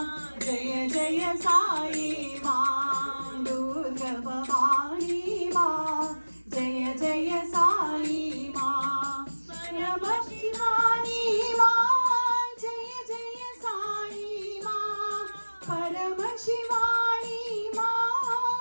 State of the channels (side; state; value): both; inverted; correlation -1.00